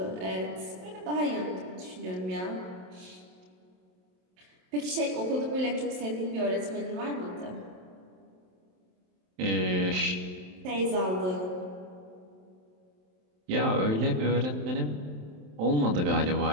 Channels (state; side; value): late; left; 27 ms